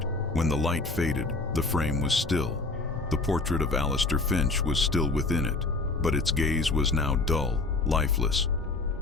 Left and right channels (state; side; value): quieter; right; 3.4 dB